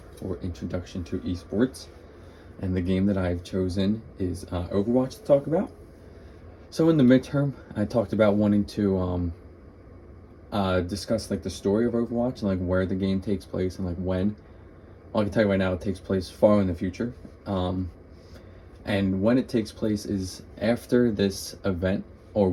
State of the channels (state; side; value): identical; both; correlation 1.00